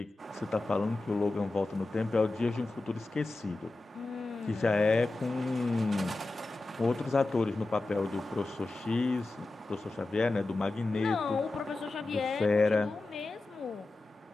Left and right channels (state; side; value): quieter; right; 3.1 dB